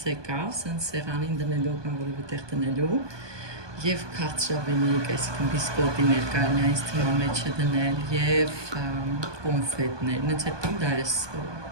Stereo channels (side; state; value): left; late; 1.2 ms